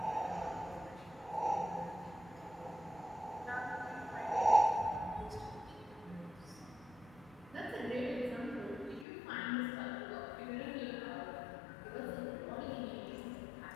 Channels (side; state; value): right; drops out; at 9.1 s